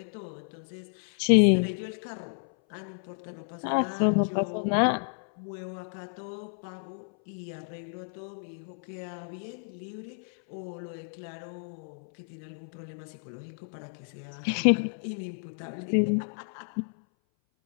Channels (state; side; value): silent; right; 57 dB below the other